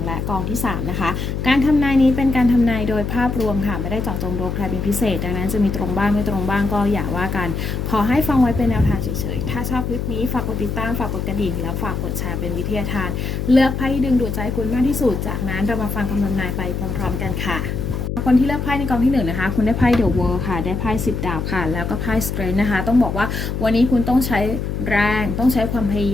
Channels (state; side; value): noise; left; hum, 3 dB below the sound